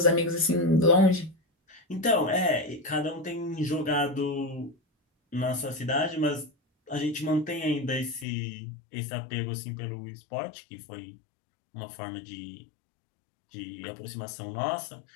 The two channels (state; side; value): drops out; right; at 8.2 s